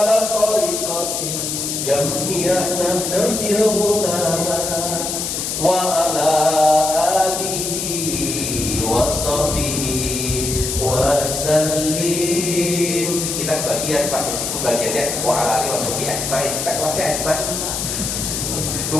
tariqati jam'iyah Nahdlatul Ulama wa ala alihi wa sahbihi wa sallim. Kita bagian Pak, meskipun bagiannya wa ala alihi wa sahbihi ajmain, kita kelasnya ajmain.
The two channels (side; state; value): left; noise; hiss, 2 dB below the sound